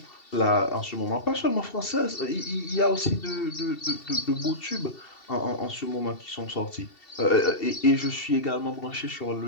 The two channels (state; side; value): late; right; 2.7 ms